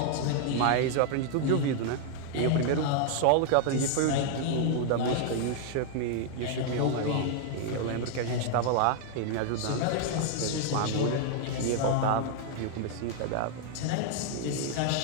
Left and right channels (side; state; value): both; different; correlation -0.01